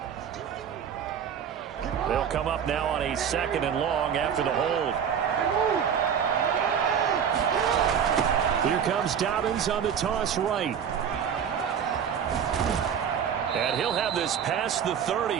They'll come up now on a 2nd and long after the hold. Here comes Dobbins on the toss right. And he'll have this past the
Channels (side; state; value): left; quieter; 8.0 dB